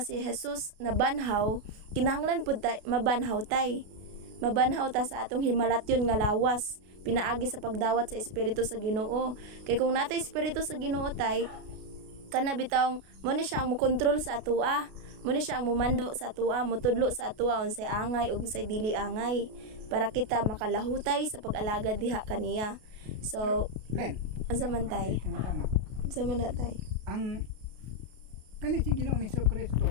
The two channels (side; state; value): left; late; 32 ms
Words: si Jesus na banhaw, kinahanglan pud ta mabanhaw tay. Mabanhaw ta sa atong himalatyon nga lawas, pinaagi sa pagdawat sa espiritu sa Ginoo. Kay kung natay espiritu sa Ginoo tay, kana bitawng mo ni siya ang mokontrol sa atoa. Mo ni siya ang mumando sa atoa, motudlo sa atoa unsay angay ug unsay dili angay para kita makalahutay sa pag-alagad diha kaniya. So, Len. unsa man tay? Unsa man na tay? Ang kani si Ginoong Hesukristo